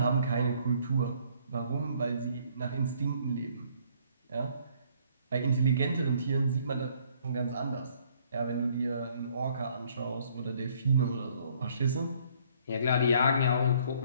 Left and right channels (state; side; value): inverted; both; correlation -0.62